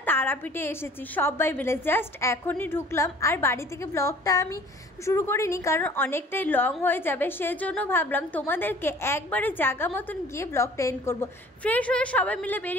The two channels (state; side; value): normal; both; correlation 0.51